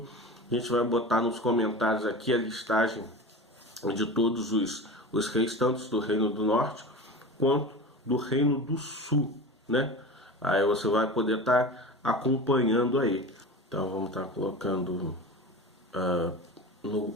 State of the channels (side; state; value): both; normal; correlation 0.31